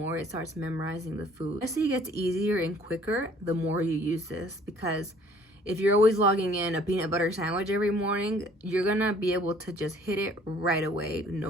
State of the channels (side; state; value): both; normal; correlation 0.56